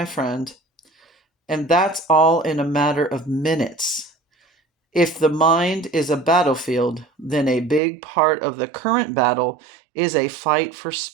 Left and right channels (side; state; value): left; drops out; at 7.8 s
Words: friend. And that's all in a matter of minutes. If the mind is a battlefield, then a big part of the current battle is a fight for